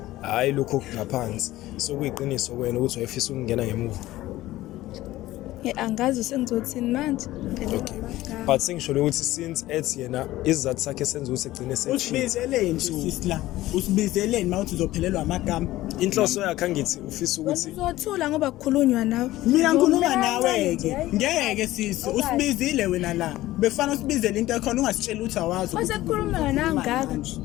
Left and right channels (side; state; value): right; quieter; 16.2 dB